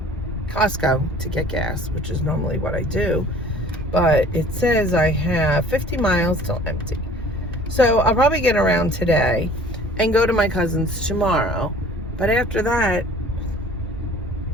Costco to get gas, which is normally what I do. But it says I have 50 miles till empty. So I'll probably get around today and go to my cousin's tomorrow. But after that,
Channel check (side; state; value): both; normal; correlation 0.49